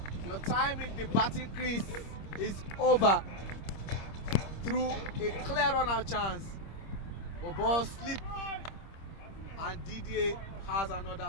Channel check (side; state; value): right; late; 26 ms